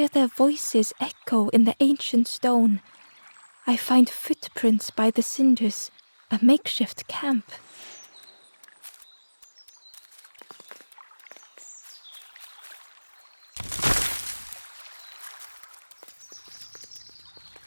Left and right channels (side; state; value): both; inverted; correlation -1.00